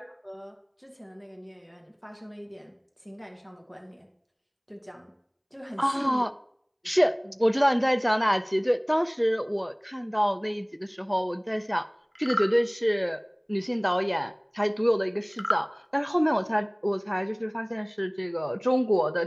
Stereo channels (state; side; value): identical; both; correlation 1.00